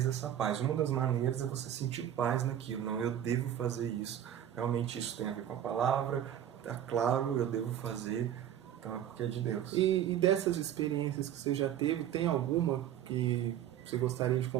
dessa paz. Uma das maneiras é você sentir paz naquilo. Não, eu devo fazer isso. Realmente isso tem a ver com a palavra. Está claro, eu devo fazer. Então é porque é de Deus. E dessas experiências que você já teve, tem alguma que você gostaria de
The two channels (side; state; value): left; quieter; 10.6 dB